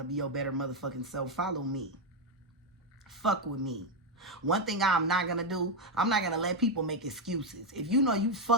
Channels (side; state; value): both; normal; correlation 0.04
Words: to be your better motherfucking self, follow me. Fuck with me. One thing I'm not going to do, I'm not going to let people make excuses. If you know you